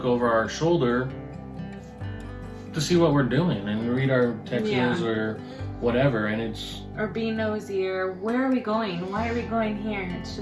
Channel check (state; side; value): identical; both; correlation 1.00